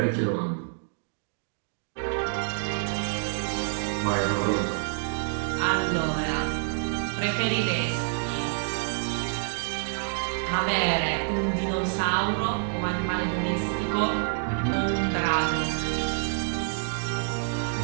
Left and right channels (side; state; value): left; silent; 60 dB below the other